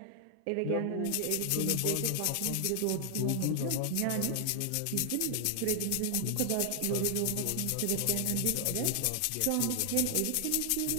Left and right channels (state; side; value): different; both; correlation 0.00